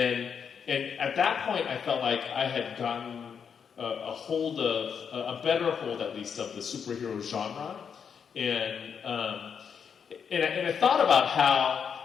at that point I felt like I had gotten a better hold at least of the superhero genre. And I thought about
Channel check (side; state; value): right; quieter; 7.0 dB